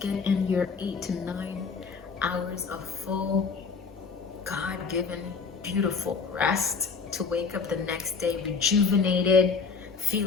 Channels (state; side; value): quieter; right; 5.1 dB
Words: in your 8 to 9 hours of full, God-given, beautiful rest to wake up the next day rejuvenated,